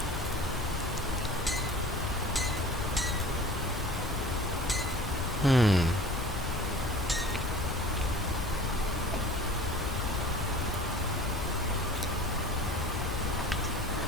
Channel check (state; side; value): normal; both; correlation 0.43